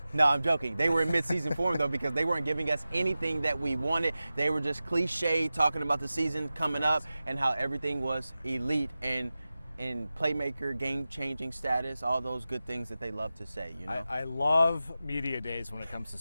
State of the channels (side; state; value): both; inverted; correlation -0.95